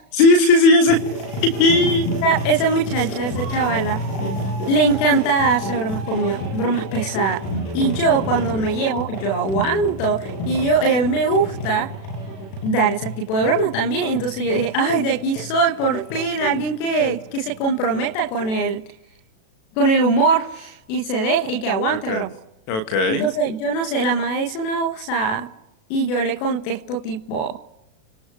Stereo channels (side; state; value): right; late; 36 ms